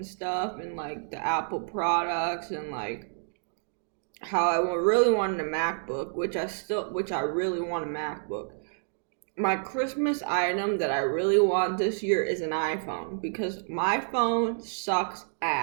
stuff, and like the Apple products, and like how I really wanted a MacBook, which I really want a MacBook. My Christmas item that I really want this year is an iPhone, because my phone sucks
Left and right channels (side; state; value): left; silent; digital silence